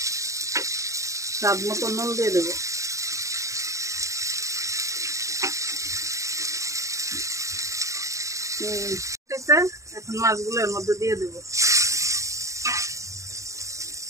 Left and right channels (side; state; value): left; late; 0.15 ms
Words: স্বাদ মতো নুন দিয়ে দেবো। এখন মাছগুলো এর মধ্যে দিয়ে দেবো।